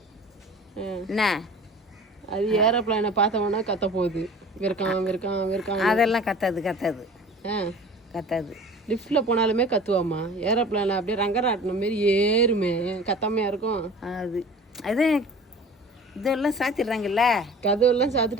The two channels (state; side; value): normal; both; correlation 0.42